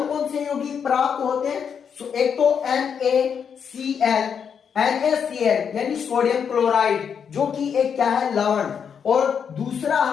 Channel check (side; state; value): right; quieter; 7.2 dB